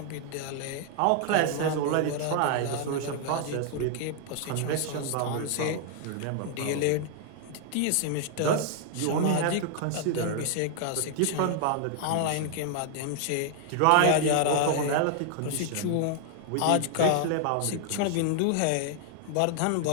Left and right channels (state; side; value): different; both; correlation 0.00